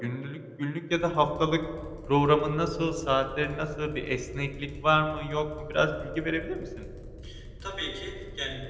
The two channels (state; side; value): identical; both; correlation 1.00